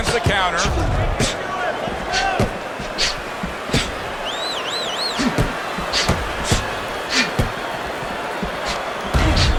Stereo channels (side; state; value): both; identical; correlation 1.00